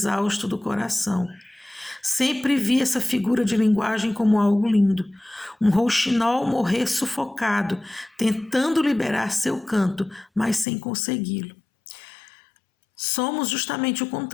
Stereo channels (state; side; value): drops out; right; at 10.7 s